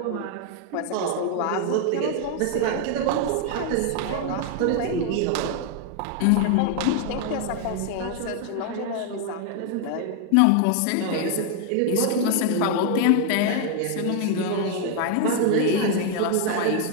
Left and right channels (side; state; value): both; different; correlation 0.00